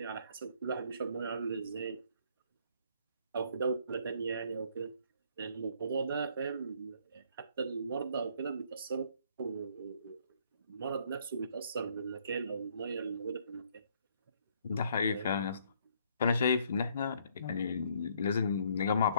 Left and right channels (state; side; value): inverted; both; correlation -0.65